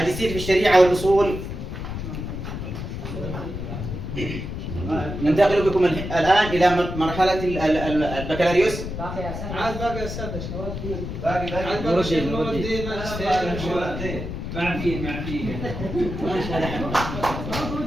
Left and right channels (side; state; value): left; noise; rumble, 6 dB below the sound